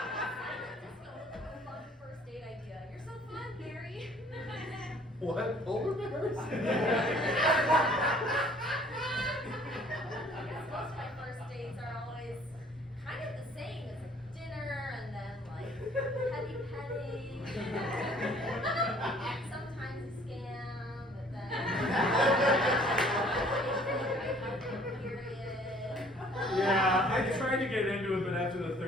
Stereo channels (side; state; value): both; normal; correlation 0.56